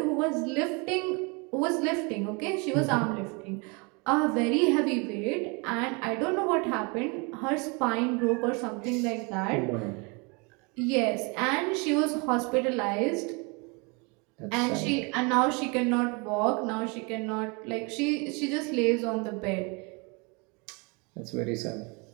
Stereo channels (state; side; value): quieter; left; 30.6 dB